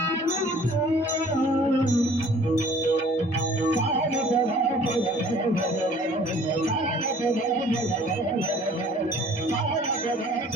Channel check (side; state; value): both; normal; correlation 0.52